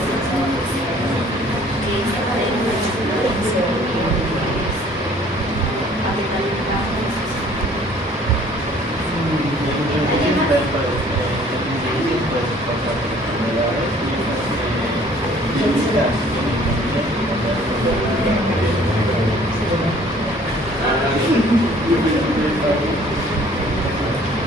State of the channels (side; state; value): both; normal; correlation 0.55